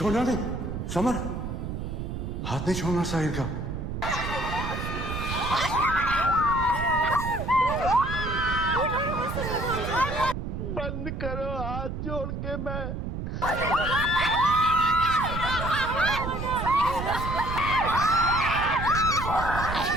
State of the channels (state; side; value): noise; right; rumble, 5 dB below the sound